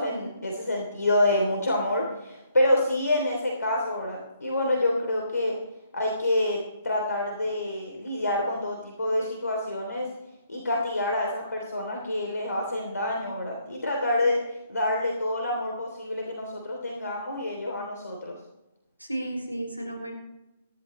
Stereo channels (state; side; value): inverted; both; correlation -0.71